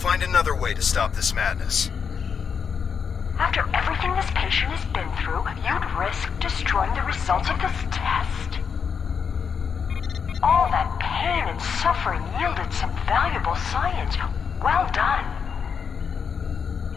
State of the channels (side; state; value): right; quieter; 6.5 dB